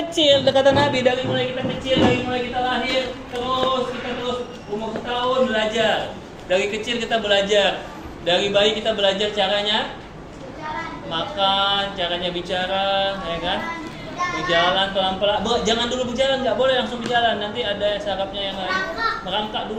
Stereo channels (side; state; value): both; identical; correlation 1.00